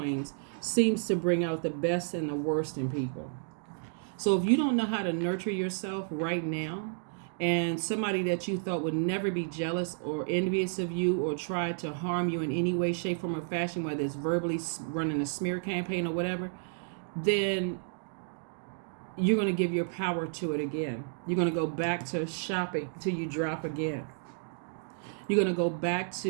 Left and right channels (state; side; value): silent; left; digital silence